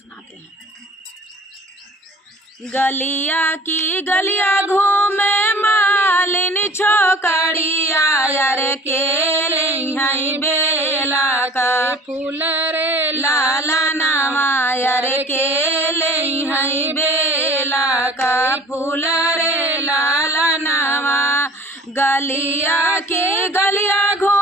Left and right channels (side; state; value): both; normal; correlation 0.46